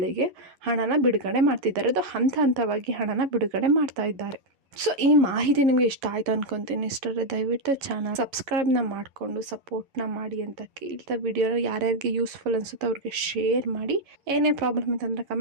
ಹಣನ ಬಿಡುಗಡೆ ಮಾಡ್ತಿದ್ದಾರೆ. ಅದು ಹಂತವಾಗಿ ಹಣನ ಬಿಡುಗಡೆ ಮಾಡ್ತಾ ಇದ್ದಾರೆ. ಸೊ ಈ ಮಾಹಿತಿ ನಿಮಗೆ ಇಷ್ಟ ಆಯಿತು ಅನ್ಕೊತೀನಿ. ಇಷ್ಟರೇ ದಯವಿಟ್ಟು ಚಾನಲ್ ಸಬ್ಸ್ಕ್ರೈಬ್ನ ಮಾಡಿಕೊಂಡು ಸಪೋರ್ಟ್ನ ಮಾಡಿ ಅಂತ ಕೇಳ್ತಾ, ವಿಡಿಯೋನ ಯಾರ್ಯಾರಿಗೆ ಯೂಸ್ಫುಲ್ ಅನಿಸುತ್ತೋ ಅವ್ರಿಗೆ ಶೇರ್ ಮಾಡಿ. ಏನೇ ಪ್ರಾಬ್ಲಮ್ ಇತ್ತಂದರೆ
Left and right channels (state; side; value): late; left; 11 ms